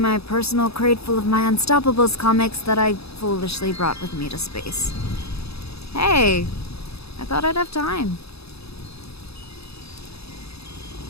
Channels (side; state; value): right; late; 0.78 ms